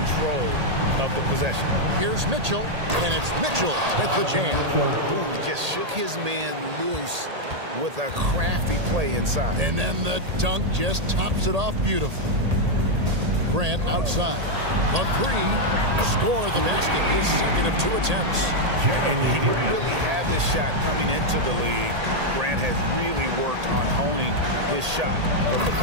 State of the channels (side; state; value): left; late; 1.8 ms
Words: of the possession. Here's Mitchell, and it's Mitchell with the jam. Ooh, just shook his man loose with a crafty play inside. And then the dunk just tops it off beautifully. Grant outside. The 3, score the basket, his second of 2 attempts. And he didn't really have this shot coming into the league. Grant has really worked on honing his shot from the